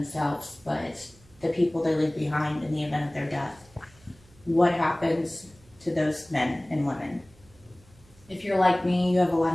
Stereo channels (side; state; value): right; noise; hum, 27 dB below the sound